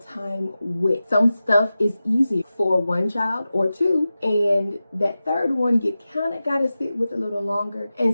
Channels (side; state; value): both; inverted; correlation -0.94